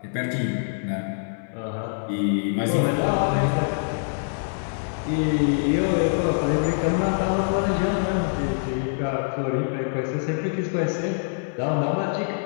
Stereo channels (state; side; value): silent; right; 62 dB below the other